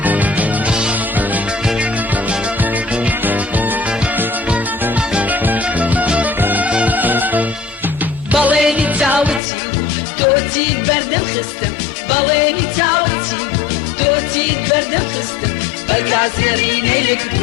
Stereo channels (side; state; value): right; drops out; at 9.4 s